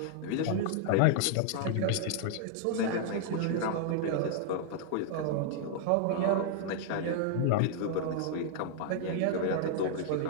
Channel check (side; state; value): both; different; correlation -0.01